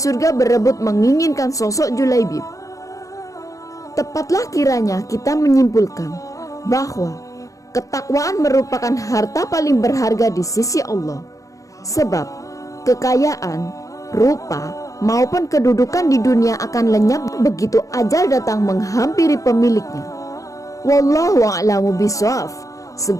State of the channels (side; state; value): right; late; 0.16 ms